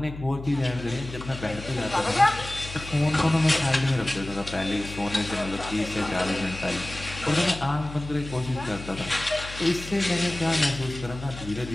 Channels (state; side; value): noise; left; hum, 12 dB below the sound